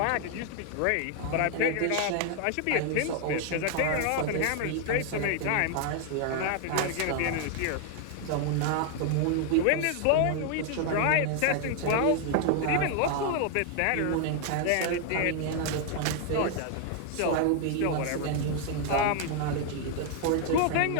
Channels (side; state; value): both; different; correlation 0.00